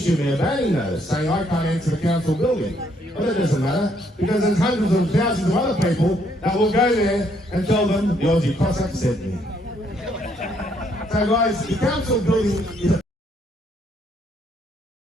me a banning notice saying I can't enter the council building. Well, that doesn't matter, because there's hundreds of thousands of other people that will go there and tell them the Aussie Cossack sent me. So guys, the council building is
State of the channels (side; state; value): both; normal; correlation 0.70